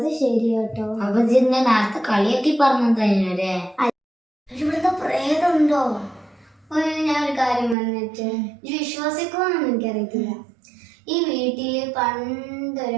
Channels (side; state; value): left; drops out; at 7.8 s